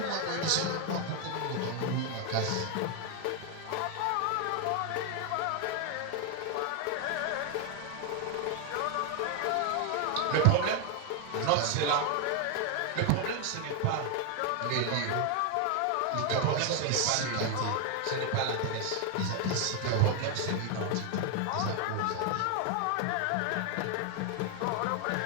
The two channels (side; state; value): both; different; correlation 0.01